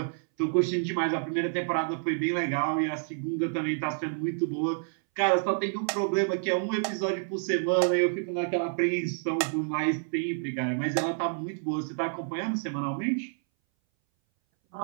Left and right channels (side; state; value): left; silent; 59 dB below the other